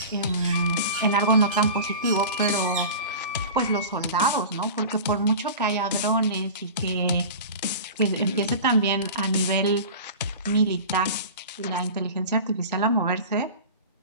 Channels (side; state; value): both; inverted; correlation -0.35